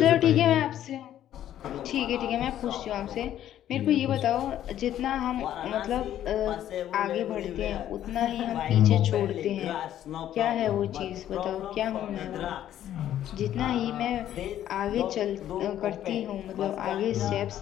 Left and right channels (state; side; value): quieter; right; 11.6 dB